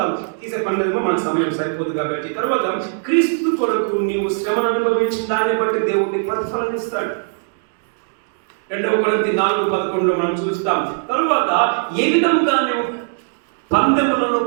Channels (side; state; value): left; silent; digital silence